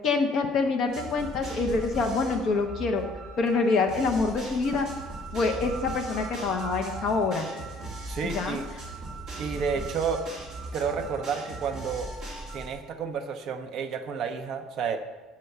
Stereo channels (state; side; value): normal; both; correlation 0.57